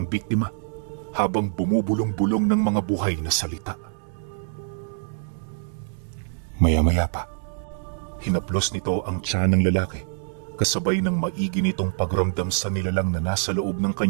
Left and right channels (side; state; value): left; silent; digital silence